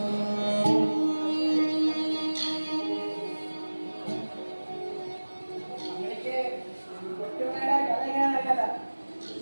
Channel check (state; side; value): inverted; both; correlation -1.00